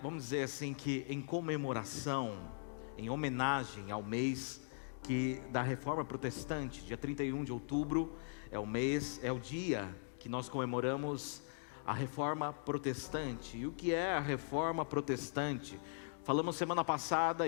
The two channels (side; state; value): right; silent; digital silence